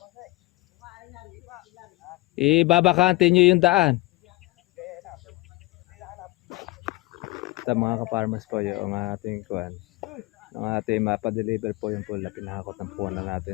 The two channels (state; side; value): quieter; right; 20.7 dB